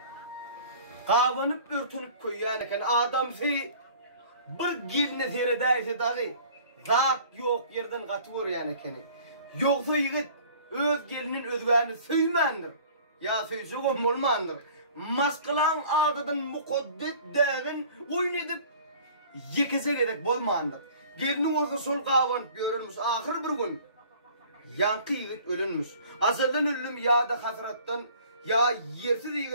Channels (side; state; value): both; inverted; correlation -0.49